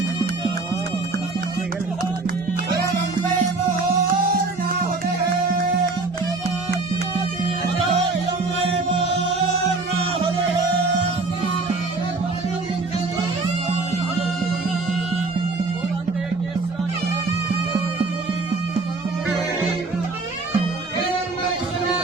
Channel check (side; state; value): left; quieter; 3.6 dB